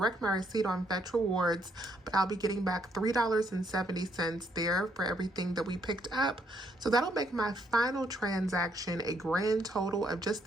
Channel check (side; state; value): both; normal; correlation 0.72